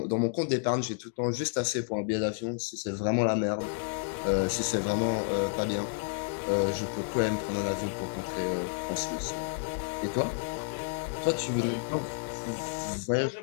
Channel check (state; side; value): silent; right; digital silence